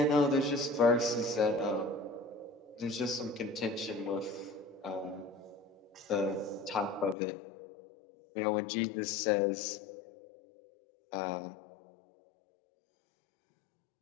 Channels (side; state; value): right; drops out; at 7.2 s